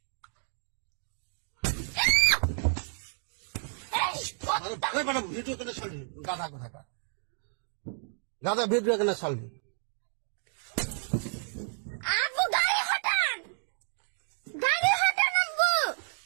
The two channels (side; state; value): left; silent; 57 dB below the other